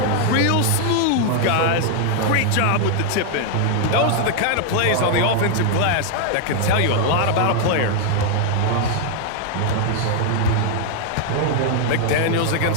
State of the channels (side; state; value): both; different; correlation 0.00